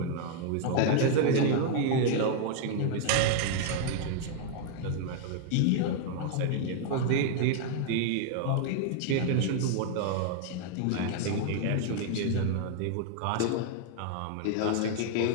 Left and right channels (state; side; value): different; both; correlation 0.00